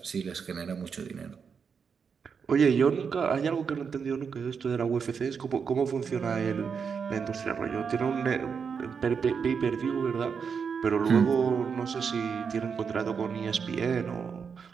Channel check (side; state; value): left; quieter; 6.2 dB